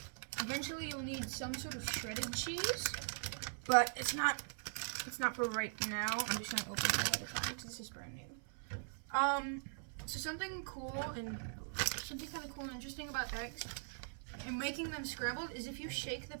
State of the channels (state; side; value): silent; left; 50 dB below the other